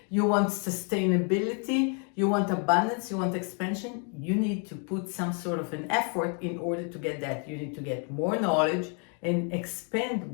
you want sustainability, you want abundance, you want expansion. You need to put some sort of an effort in order to get that. You need to get more knowledge and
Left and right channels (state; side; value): quieter; right; 39.6 dB